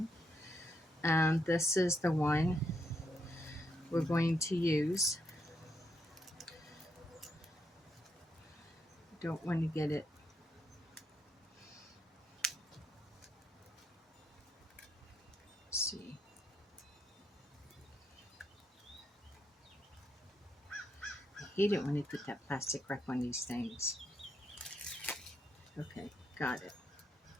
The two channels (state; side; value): normal; both; correlation 0.78